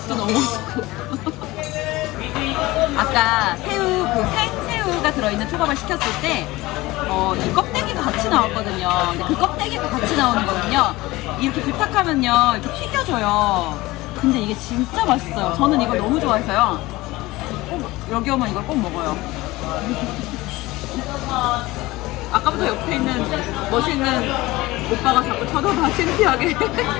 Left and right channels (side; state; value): right; quieter; 19.7 dB